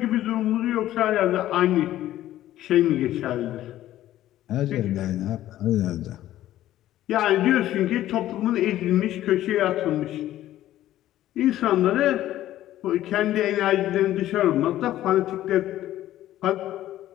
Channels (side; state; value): right; quieter; 13.6 dB